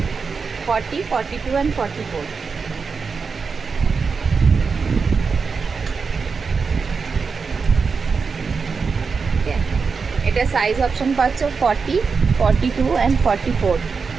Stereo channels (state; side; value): quieter; left; 5.1 dB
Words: 40, 42 অ্যান্ড 44। এটা সাইজ অপশন পাচ্ছ 40, 42 অ্যান্ড 44।